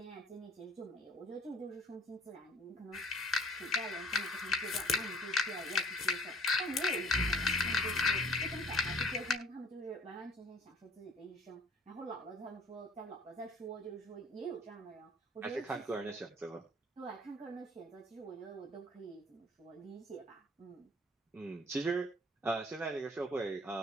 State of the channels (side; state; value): both; normal; correlation 0.54